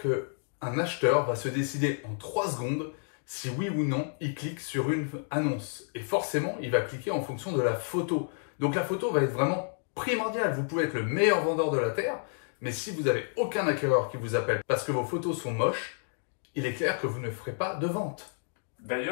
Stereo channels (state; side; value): silent; right; 58 dB below the other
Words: qu'un acheteur va se décider en 3 secondes si oui ou non il clique sur une annonce. Et forcément, il va cliquer en fonction de la photo. Donc la photo va être vraiment primordiale. Vous pouvez être le meilleur vendeur de la Terre, mais si vous n'avez aucun acquéreur qui vous appelle parce que vos photos sont moches, il est clair que vous ne ferez pas de vente.